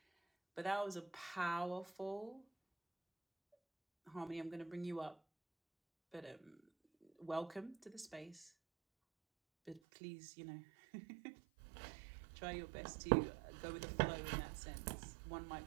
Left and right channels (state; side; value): drops out; left; at 9.8 s